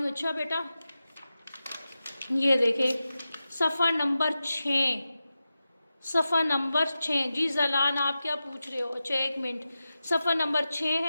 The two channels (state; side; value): inverted; both; correlation -0.92